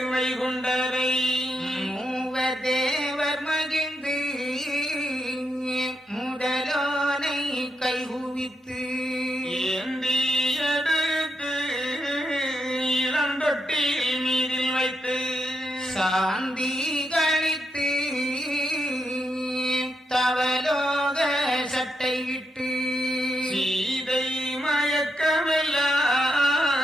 வைகுண்டரை மூவர் தேவர் மகிழ்ந்து முதலோனை கைகுவித்து ஏந்தி எடுத்து இளந்தொட்டில் மீதில் வைத்து சாந்தி கழித்து தவலோக சட்டையிட்டு சீதை மயக்கமெல்லாம்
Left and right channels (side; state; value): both; normal; correlation 0.83